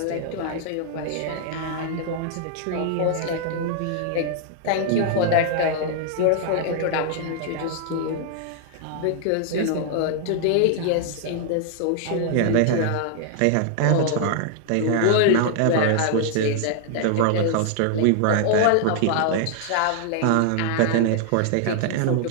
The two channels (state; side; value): different; both; correlation -0.01